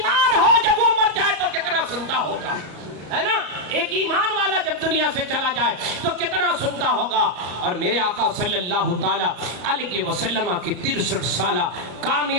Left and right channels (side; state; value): left; late; 34 ms